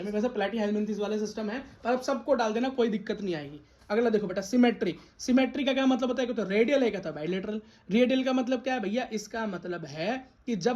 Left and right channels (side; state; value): both; identical; correlation 1.00